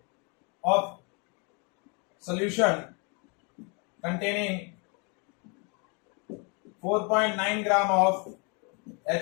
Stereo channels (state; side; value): quieter; right; 33.9 dB